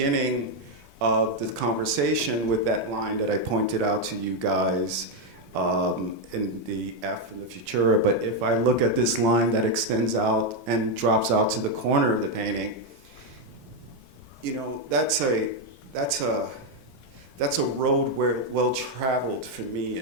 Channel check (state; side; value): normal; both; correlation 0.03